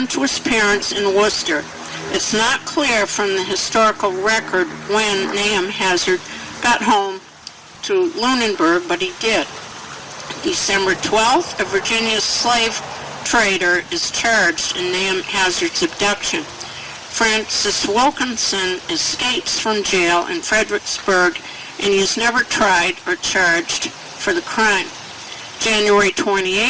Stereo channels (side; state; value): both; identical; correlation 1.00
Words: to his parents in Worcester. It's not clear from the historical record when Nahum Hazard got home to Lunenburg, but he did. December 12th, a Virginia slave trader is charged in Nahum Hazard's abduction. Francis Wilkinson escapes from jail in Fredericksburg, and he is never tried or charged for the crime. January